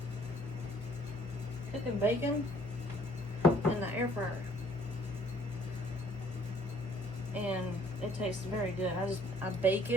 cooking bacon in the air fryer, and it tastes very good. I bake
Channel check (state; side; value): normal; both; correlation 0.60